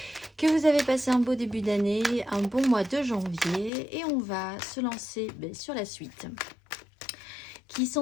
que vous avez passé un beau début d'année, un bon mois de janvier et on va se lancer sur la suite qui, sans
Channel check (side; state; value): right; drops out; at 3.7 s